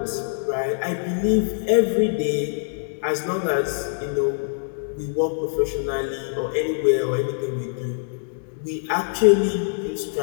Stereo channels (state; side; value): silent; right; digital silence